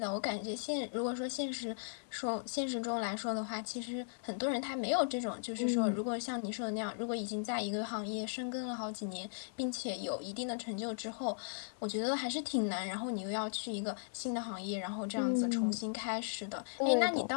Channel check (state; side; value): silent; right; 53 dB below the other